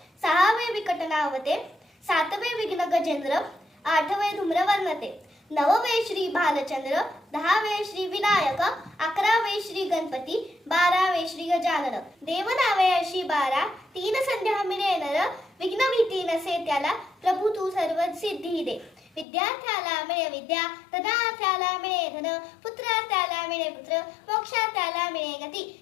सहावे विकटनावते, सातवे विघ्न गजेंद्र, आठवे धूम्रवर्णते, नववे श्री भालचंद्र, दहावे श्री विनायक, अकरावे श्री गणपती, बारावे श्री गजानन। देवनावे अशी 12, तीन संध्या मिळे नर, विघ्न भीती नसे त्याला, प्रभू तू सर्व सिद्धी दे। विद्यार्थ्याला मिळे विद्या, धनार्थ्याला मिळे धन, पुत्रार्थ्याला मिळे पुत्र, मोक्षार्थ्याला मिळे गती।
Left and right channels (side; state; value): right; drops out; at 19.2 s